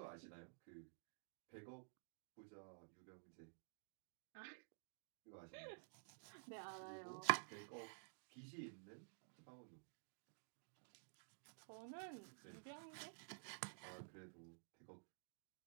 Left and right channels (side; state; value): left; silent; digital silence